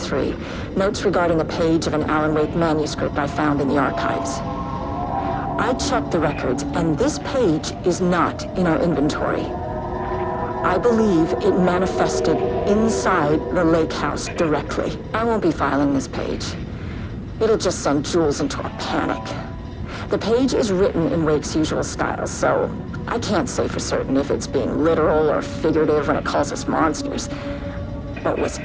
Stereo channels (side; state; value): both; identical; correlation 1.00